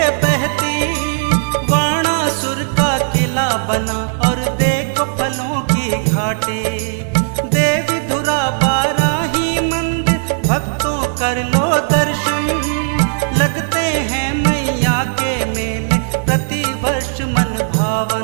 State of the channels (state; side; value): silent; left; 69 dB below the other